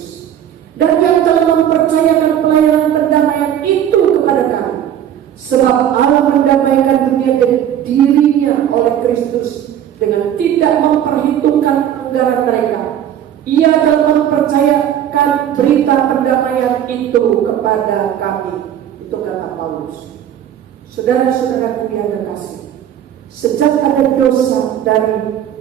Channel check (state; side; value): quieter; left; 10.4 dB